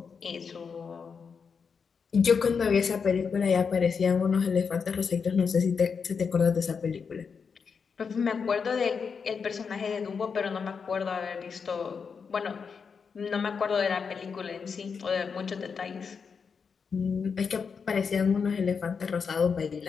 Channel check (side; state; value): right; quieter; 5.9 dB